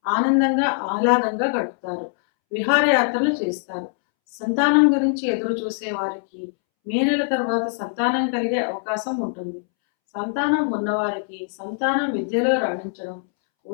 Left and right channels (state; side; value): silent; right; 64 dB below the other